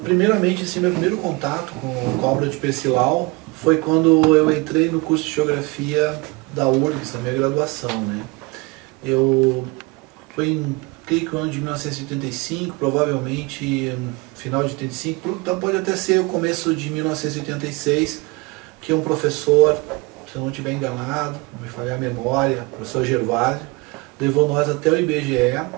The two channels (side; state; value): left; quieter; 25.5 dB